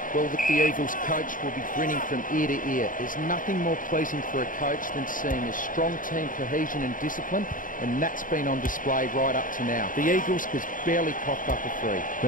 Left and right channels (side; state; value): right; late; 0.39 ms